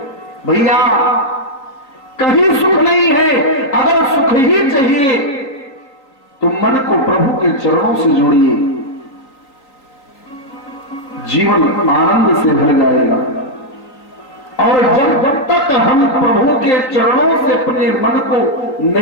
भैया कहीं सुख नहीं है। अगर सुख ही चाहिए तो मन को प्रभु के चरणों से जोड़िए, जीवन आनंद से भर जाएगा। और जब तक हम प्रभु के चरणों से अपने मन को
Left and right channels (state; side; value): late; right; 3.8 ms